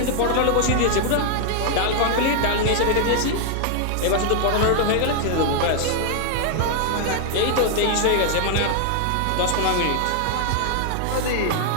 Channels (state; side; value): different; both; correlation 0.00